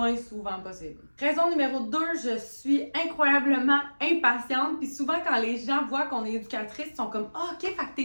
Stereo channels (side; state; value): both; inverted; correlation -1.00